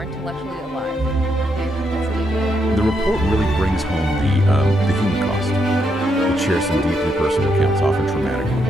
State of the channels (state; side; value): normal; both; correlation 0.79